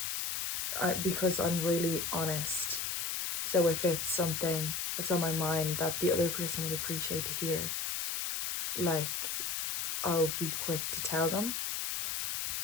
because I'm really honest. So if it's something that's on my mind that the other person would appreciate to hear, like, I'll be quick to tell them,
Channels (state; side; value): noise; left; hiss, 1 dB below the sound